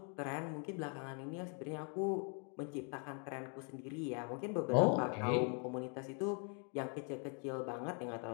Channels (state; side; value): quieter; right; 39.4 dB